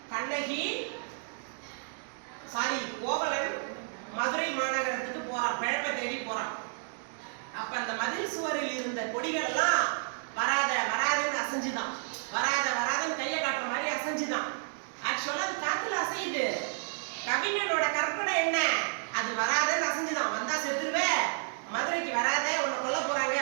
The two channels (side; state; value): left; silent; 57 dB below the other